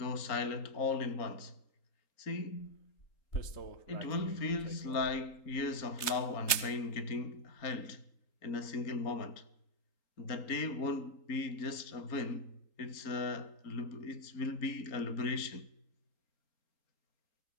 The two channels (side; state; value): right; late; 3.8 ms